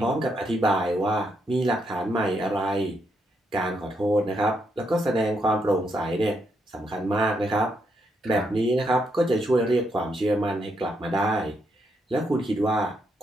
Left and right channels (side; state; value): both; normal; correlation 0.78